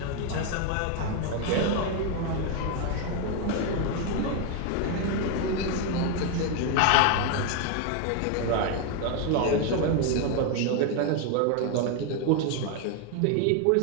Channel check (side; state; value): both; different; correlation 0.01